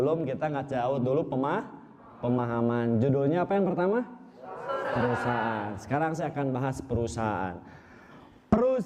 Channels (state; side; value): identical; both; correlation 1.00